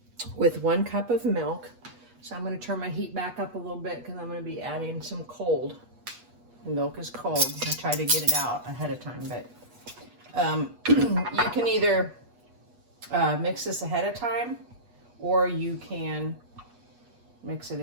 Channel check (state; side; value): late; left; 8.3 ms